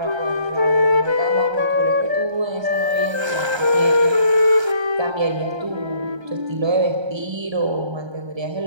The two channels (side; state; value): left; late; 1.3 ms